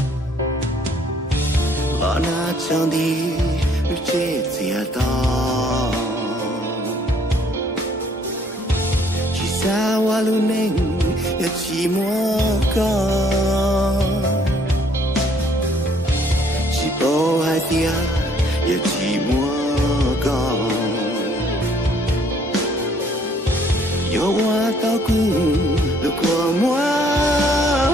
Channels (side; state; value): both; normal; correlation 0.63